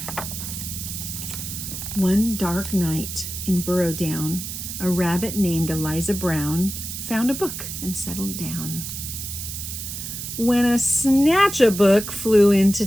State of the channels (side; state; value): right; noise; hiss, 7 dB below the sound